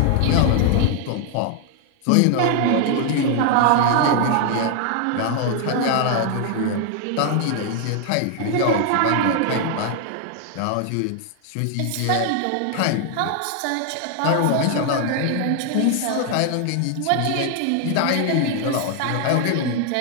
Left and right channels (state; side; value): different; both; correlation 0.00